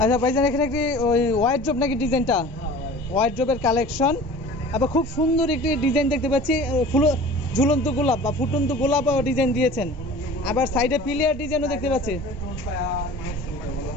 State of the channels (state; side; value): normal; both; correlation 0.42